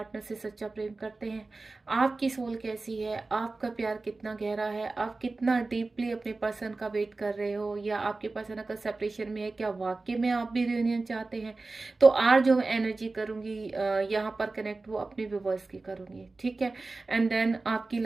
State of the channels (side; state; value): left; quieter; 3.5 dB